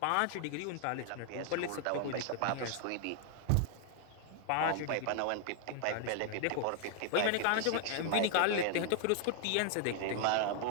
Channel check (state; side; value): different; both; correlation 0.00